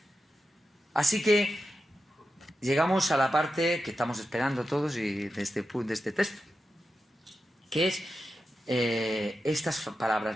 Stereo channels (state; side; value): normal; both; correlation 0.90